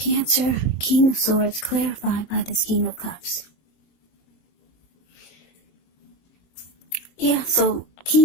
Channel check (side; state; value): right; late; 23 ms